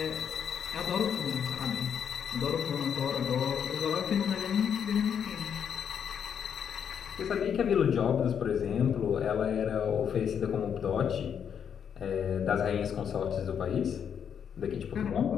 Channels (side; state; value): right; quieter; 7.9 dB